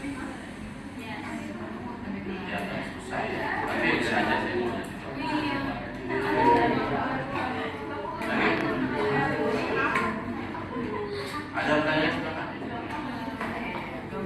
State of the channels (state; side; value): identical; both; correlation 1.00